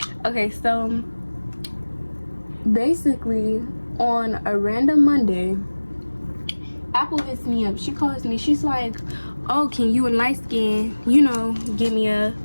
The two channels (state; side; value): inverted; both; correlation -1.00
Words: Okay, so basically on a random Monday, Apple hits me up. She calls me. She's like, oh, can you and Light Skin, you know, give me a